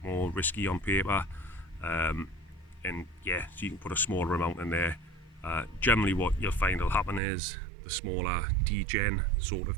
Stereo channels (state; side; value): drops out; left; at 7.2 s